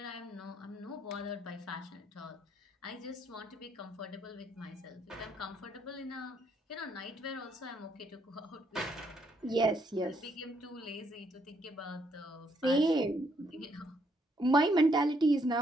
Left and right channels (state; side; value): normal; both; correlation 0.72